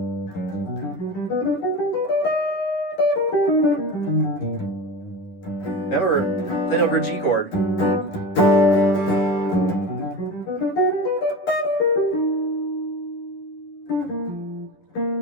Remember, then over a G chord.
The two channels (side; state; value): right; late; 10 ms